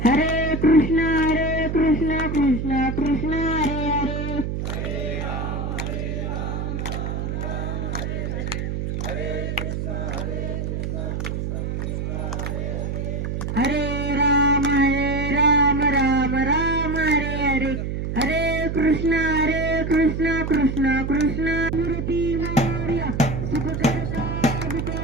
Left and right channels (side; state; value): right; noise; hum, 2 dB below the sound